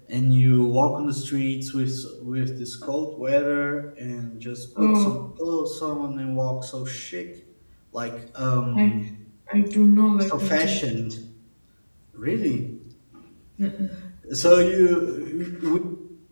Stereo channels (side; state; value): both; inverted; correlation -1.00